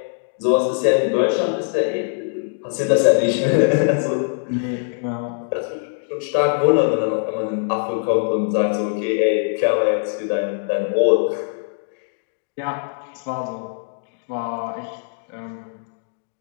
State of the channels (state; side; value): silent; right; digital silence